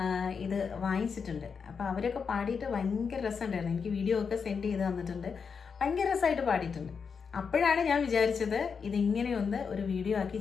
ഇത് വാങ്ങിച്ചിട്ടുണ്ട്. അപ്പോൾ അവരൊക്കെ പാടിയിട്ട് ഭയങ്കര രസമുണ്ടായിരുന്നു. എനിക്ക് വീഡിയോ ഒക്കെ സെൻഡ് ചെയ്ത് തന്നിട്ടുണ്ട്. ഭയങ്കര രസമായിട്ട് പാടിയിട്ടുണ്ട്. അപ്പോഴാണ് ഞാൻ വിചാരിച്ചത് ഇതിങ്ങനെയൊന്ന് ഒരു വീഡിയോ ആക്കി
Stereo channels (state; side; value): quieter; right; 5.9 dB